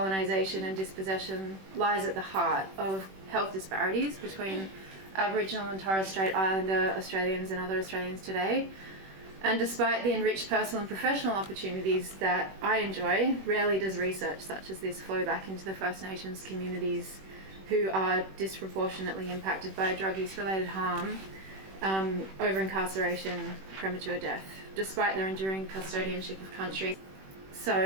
and dispossession lies at the heart of health disparities between Aboriginal and Torres Strait Islander Australians and other Australians today. And despite the enriched personal and professional opportunities that I enjoy, rarely does research such as this flow back into the First Nations communities who are disproportionately impacted by drug use related harm, over incarceration, premature death, despite their enduring custodianship of country. So,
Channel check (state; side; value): late; left; 21 ms